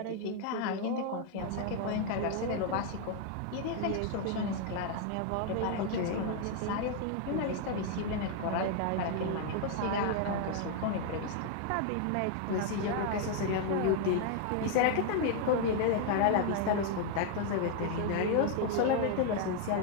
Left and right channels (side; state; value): both; different; correlation 0.00